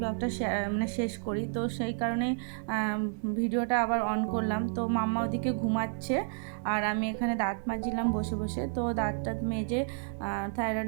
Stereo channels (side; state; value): left; silent; 57 dB below the other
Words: মানে শেষ করি। তো সেই কারণেই ভিডিওটা আবার অন করলাম। তো মাম্মা ওদিকে ঘুমাচ্ছে, আর আমি এখানে দাঁত মাজছিলাম বসে বসে। তো দাঁতটা মেজে